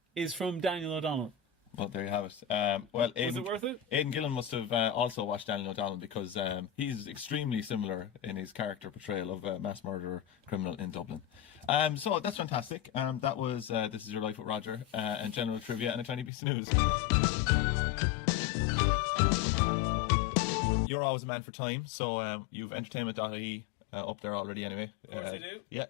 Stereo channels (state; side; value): drops out; right; at 16.3 s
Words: is from Daniel O'Donnell. Well, there you have it. Well, Was it worth it? Aidan Gillen must have also watched Daniel O'Donnell because he's extremely similar in his character portrayal of a mass murderer criminal in Dublin. So that's fantastic. That was This Is Your Life with Roger and general trivia and a tiny piece of news. you're always a man for time, so you've entertainment.ie up there already anyway. Of course I do. Yeah,